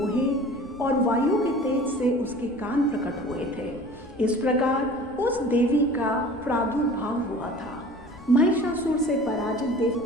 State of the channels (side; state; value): left; noise; rumble, 22 dB below the sound